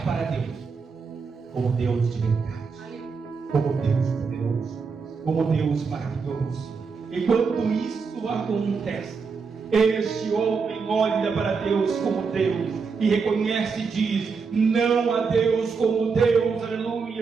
para Deus como Deus de verdade, como Deus poderoso, como Deus maravilhoso. Enquanto isso acontece, este homem olha para Deus como Deus e reconhece e diz: não há Deus como Deus,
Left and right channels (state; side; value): quieter; left; 5.2 dB